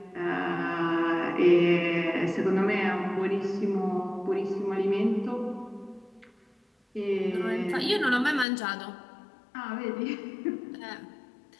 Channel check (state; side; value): drops out; right; at 8.5 s